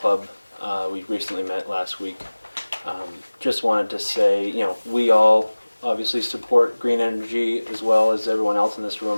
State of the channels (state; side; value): inverted; both; correlation -1.00